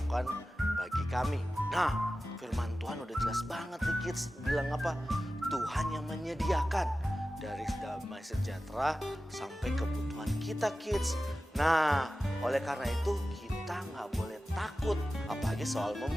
bagi kami. Nah, firman Tuhan udah jelas banget nih kids. Bilang apa? Tuhan yang menyediakan dari damai sejahtera sampai kebutuhan kita kids. Nah, oleh karena itu kita nggak boleh takut. Apalagi soal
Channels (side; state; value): both; normal; correlation 0.94